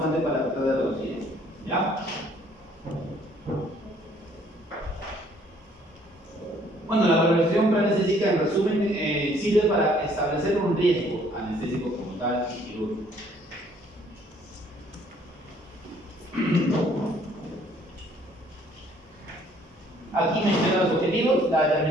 para tratar de reducir esto, ¿ya? Bueno, la valoración preanestésica, en resumen, sirve para establecer un riesgo anestésico como tal y quirúrgico. Aquí menciono los objetivos, la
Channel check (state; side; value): normal; both; correlation 0.61